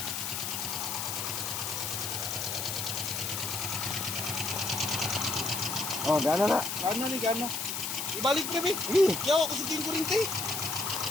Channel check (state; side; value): noise; left; hiss, 3 dB below the sound